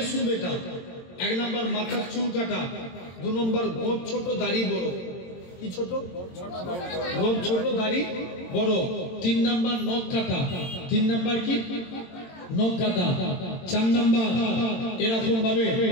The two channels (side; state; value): right; late; 22 ms